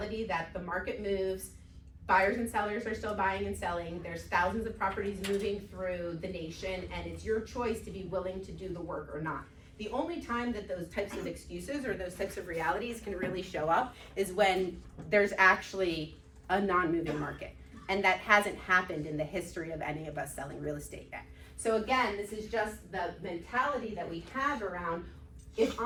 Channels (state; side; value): identical; both; correlation 1.00